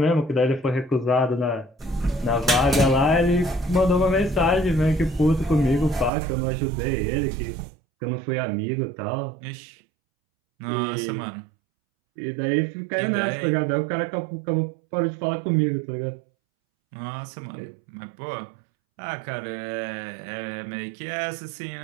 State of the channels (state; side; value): drops out; left; at 6.1 s